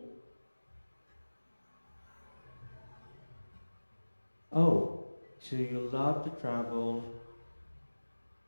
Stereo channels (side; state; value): both; inverted; correlation -1.00